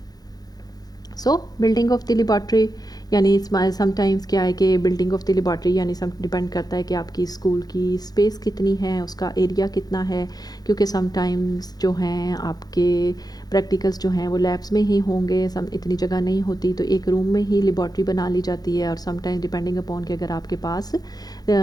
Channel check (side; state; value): right; late; 0.19 ms